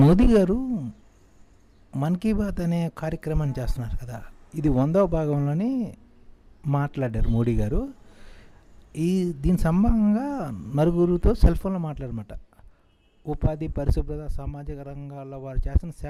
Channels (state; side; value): identical; both; correlation 1.00